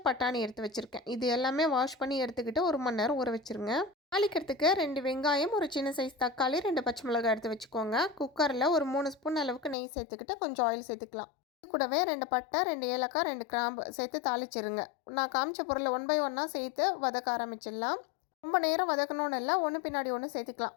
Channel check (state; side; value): drops out; right; at 9.8 s